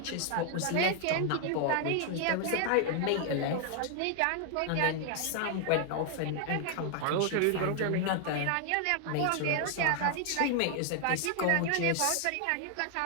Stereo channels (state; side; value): different; both; correlation 0.00